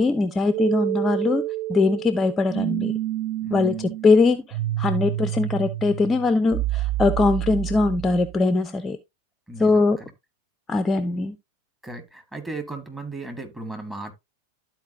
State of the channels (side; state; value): both; normal; correlation 0.77